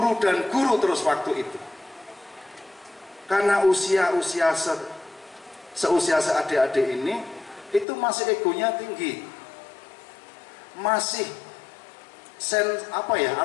dan guru terus waktu itu. Karena usia seusia seadik-adik ini itu masih egonya tinggi. Masih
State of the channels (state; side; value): drops out; right; at 7.9 s